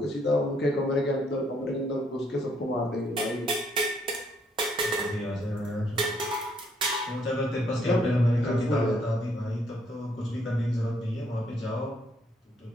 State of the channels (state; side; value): normal; both; correlation 0.70